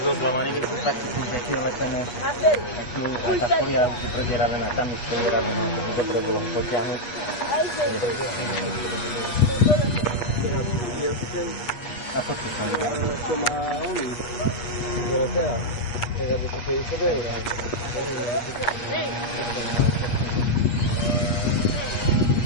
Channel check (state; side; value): late; right; 8.3 ms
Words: keď sú taký nejaký lepené. A tá fólia už je predieravená, tam je predieravená, to dobre bolo ho potiahnuť. A fotky sa mi dá. To má oni. Zolotea. Tak aby to 50 €.